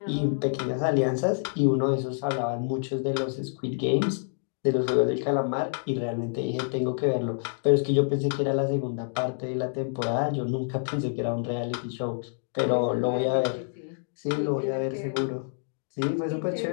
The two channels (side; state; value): right; silent; digital silence